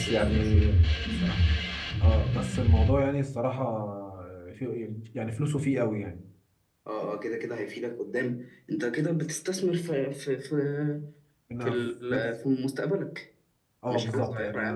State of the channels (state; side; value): identical; both; correlation 1.00